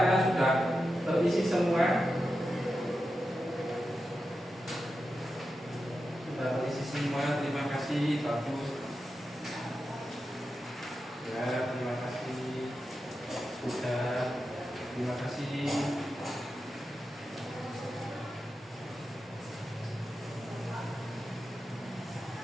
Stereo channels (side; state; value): both; normal; correlation 0.90